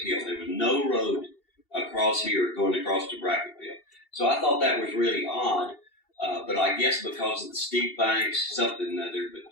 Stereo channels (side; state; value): right; late; 2.7 ms